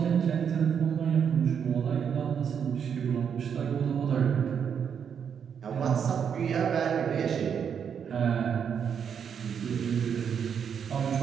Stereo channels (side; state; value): left; quieter; 7.5 dB